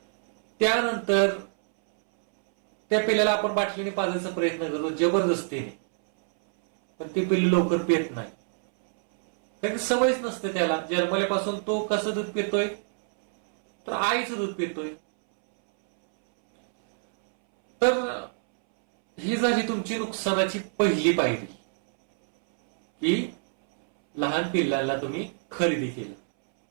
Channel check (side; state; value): left; silent; 61 dB below the other